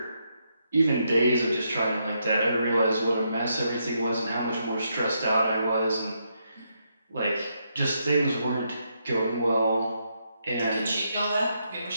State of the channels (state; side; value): inverted; both; correlation -0.79